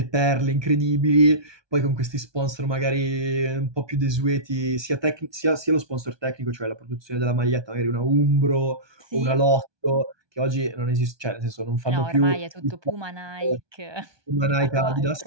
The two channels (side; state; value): left; late; 1.2 ms